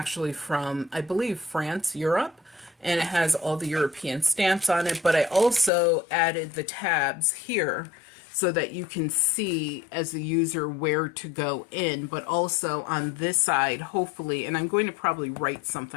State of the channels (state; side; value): drops out; right; at 5.7 s